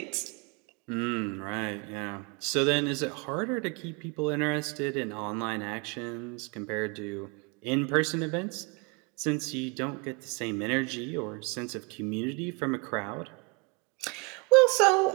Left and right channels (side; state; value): left; quieter; 30.5 dB